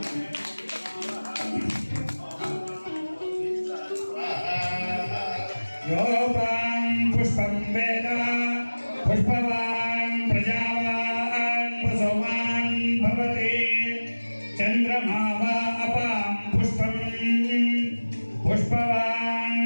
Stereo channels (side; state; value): both; inverted; correlation -1.00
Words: పుష్పం వేద పుష్పవాన్ ప్రజావాన్ వసోమాన్ భవతి చంద్రమా వా అపాం పుష్పం పుష్పవాన్